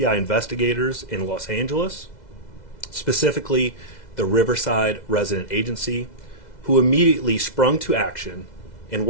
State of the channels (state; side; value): late; right; 2.0 ms